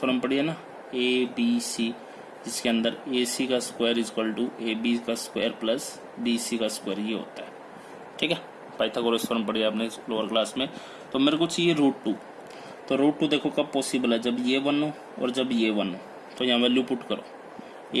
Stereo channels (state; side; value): identical; both; correlation 1.00